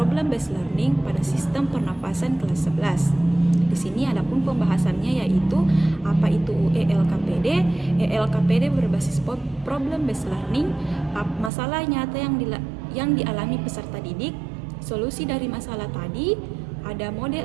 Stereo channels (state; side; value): drops out; left; at 11.5 s